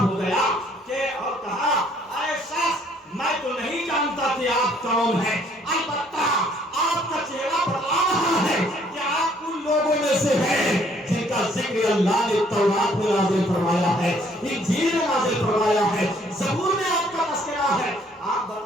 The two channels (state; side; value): normal; both; correlation 0.63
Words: گیا کہ اور کہا اے شخص میں تو نہیں جانتا کہ آپ کون ہیں, البتہ آپ کا چہرہ بتا رہا ہے کہ آپ ان لوگوں میں سے ہیں جن کا ذکر اللہ نے تورات میں نازل فرمایا ہے, انجیل میں نازل فرمایا ہے, زبور میں آپ کا تذکرہ ہے. آپ